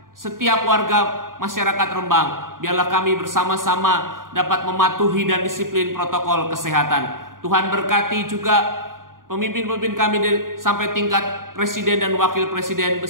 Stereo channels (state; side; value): late; left; 0.90 ms